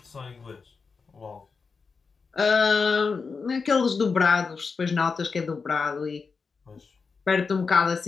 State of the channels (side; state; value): right; quieter; 5.0 dB